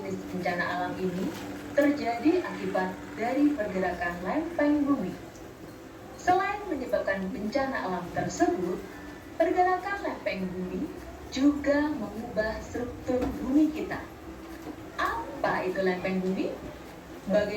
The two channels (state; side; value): identical; both; correlation 1.00